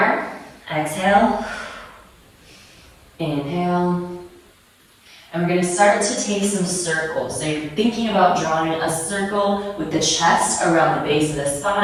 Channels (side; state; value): both; identical; correlation 1.00